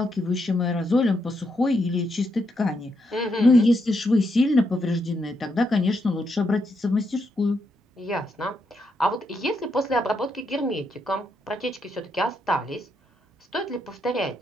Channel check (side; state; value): both; normal; correlation 0.79